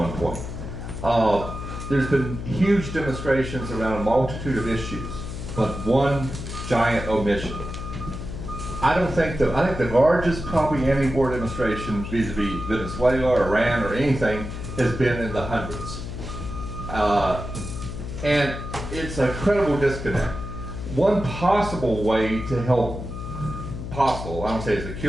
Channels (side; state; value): left; noise; hum, 7 dB below the sound